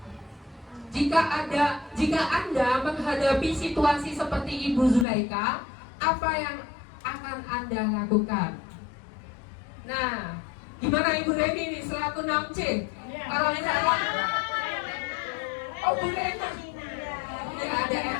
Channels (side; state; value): right; drops out; at 5.1 s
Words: Jika Anda menghadapi situasi seperti Ibu Zulaika, apa yang akan Anda lakukan? Nah, gimana Ibu Reni ini selaku 6C? Kalau misalkan oh Bu Rena, ya ada